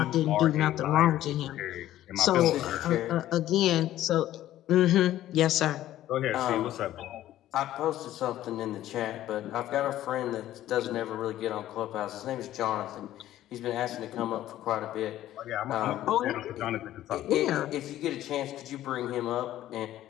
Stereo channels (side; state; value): right; quieter; 13.5 dB